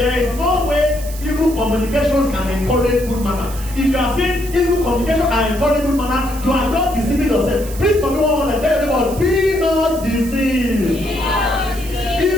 is no way evil communications can encourage good manner. If you are saying evil communication can encourage good manner, you are just deceiving yourself. Please, for me, one want to tell you about be not deceived.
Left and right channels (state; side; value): noise; right; hiss, 15 dB below the sound